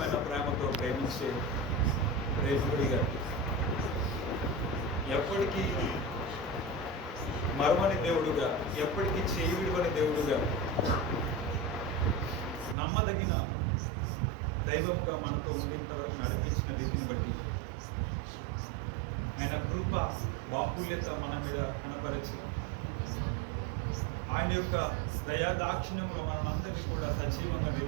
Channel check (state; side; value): drops out; left; at 12.8 s